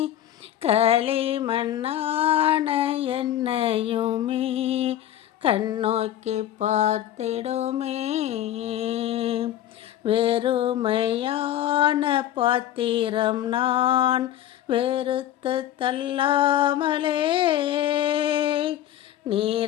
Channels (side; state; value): right; quieter; 12.1 dB